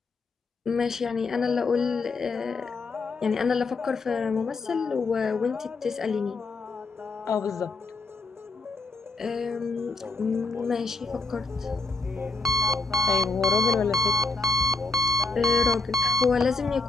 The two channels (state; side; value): quieter; right; 3.8 dB